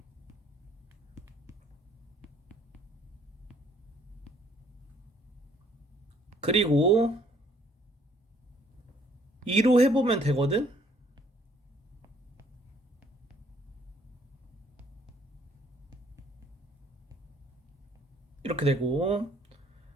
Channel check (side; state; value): both; normal; correlation 0.62